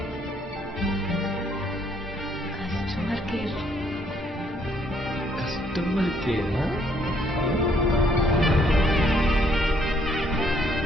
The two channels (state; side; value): normal; both; correlation 0.67